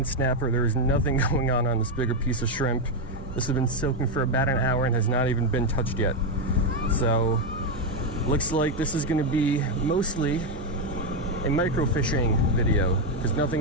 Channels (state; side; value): normal; both; correlation 0.05